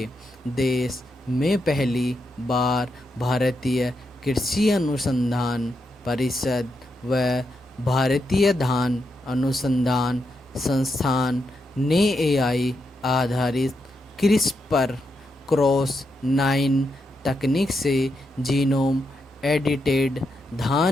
देश में पहली बार भारतीय कृषि अनुसंधान परिषद व भारतीय धान अनुसंधान संस्थान ने एआई आधारित क्रिस्पर क्रॉस 9 तकनीक से जीनोम एडिटेड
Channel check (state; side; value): normal; both; correlation 0.84